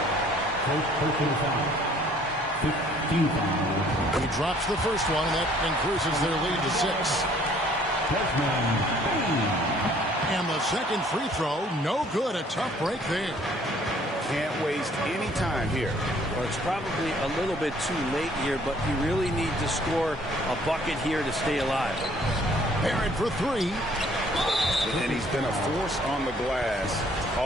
He drops the first one, and that increases their lead to 6. And the second free throw, no good. A tough break there. Can't waste any time here. Well, it's probably a little bit too late here, but you really need to score a bucket here to stay alive. Barrett for three. And he's been a force on the glass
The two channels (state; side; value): normal; both; correlation 0.59